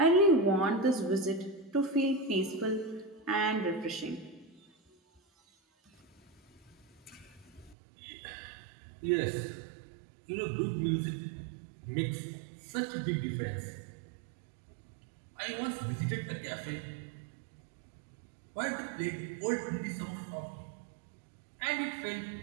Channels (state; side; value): drops out; left; at 7.8 s